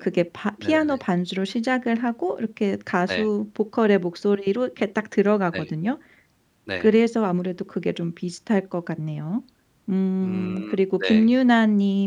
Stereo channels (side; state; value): both; identical; correlation 1.00